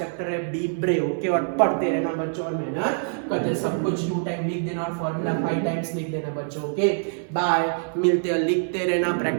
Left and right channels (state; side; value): silent; left; 62 dB below the other